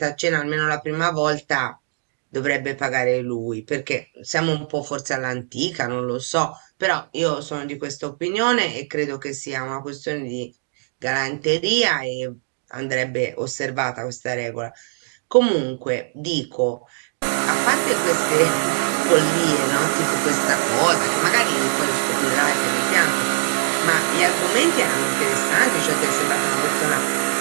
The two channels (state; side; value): silent; left; digital silence